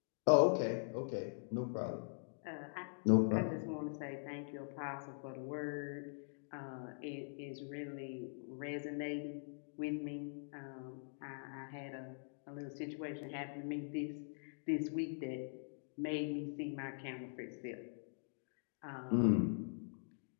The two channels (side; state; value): right; silent; digital silence